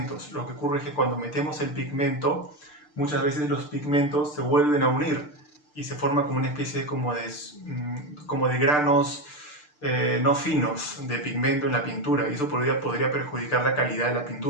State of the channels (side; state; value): right; late; 6.7 ms